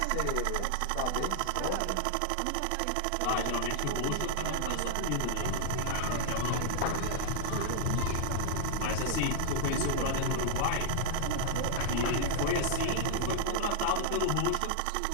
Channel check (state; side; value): different; both; correlation -0.01